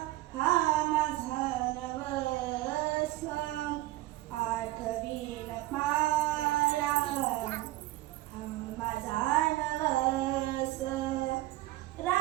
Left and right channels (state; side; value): quieter; left; 17.1 dB